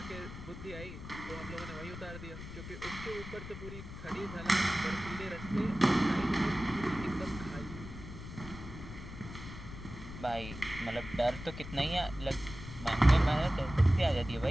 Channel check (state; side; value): noise; left; rumble, 11 dB below the sound